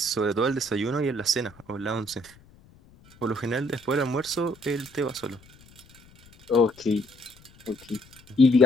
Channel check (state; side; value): noise; left; rumble, 26 dB below the sound